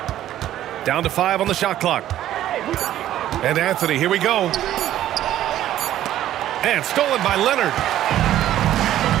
Down to 5 on the shot clock. And Anthony, here we go. And stolen by Leonard.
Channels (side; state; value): left; quieter; 12.6 dB